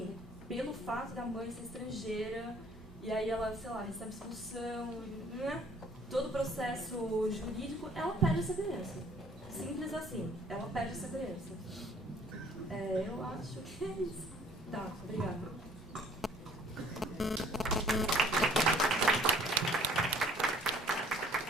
pelo fato da mãe ser estrangeira, e aí ela, sei lá, recebe expulsão, né? Todo o processo jurídico, ela perde essa criança. Simples assim, ela perde essa criança. Eu acho que é isso. Tá, obrigada.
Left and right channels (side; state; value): both; normal; correlation 0.57